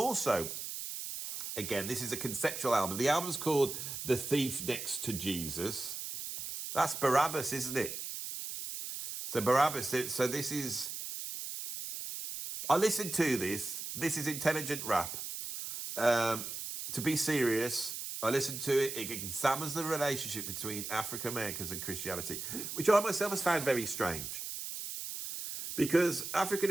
again, this is a conceptual album. The album's called The Thief Next to Jesus. That's Barabbas, isn't it? So Barabbas, so this is... I listened to this. This is intelligent rap. To be serious, I listened to it. It examines the relationship between African Americans and Christianity, which I myself has found very strange. Because African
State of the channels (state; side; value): noise; right; hiss, 6 dB below the sound